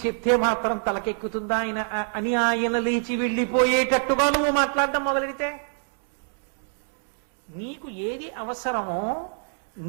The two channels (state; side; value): silent; left; 61 dB below the other